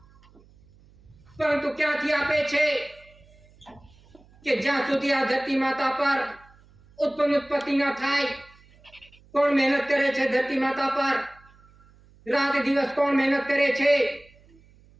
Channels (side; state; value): right; noise; hum, 28 dB below the sound